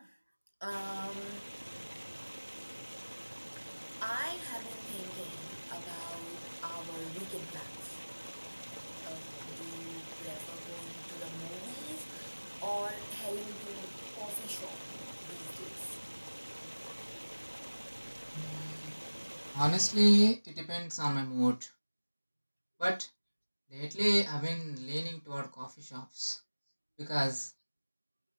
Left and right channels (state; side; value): inverted; both; correlation -1.00